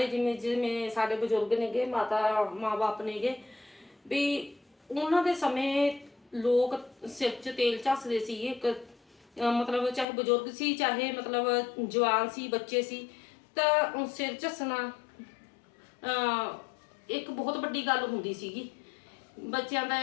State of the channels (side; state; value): right; drops out; at 10.1 s